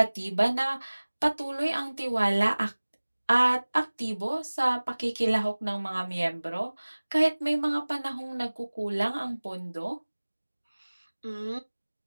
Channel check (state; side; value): inverted; both; correlation -1.00